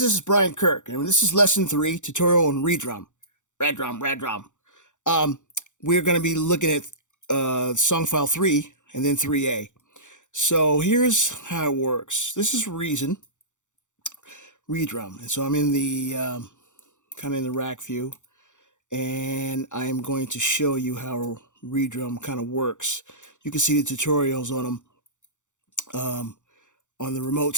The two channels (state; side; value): late; right; 0.85 ms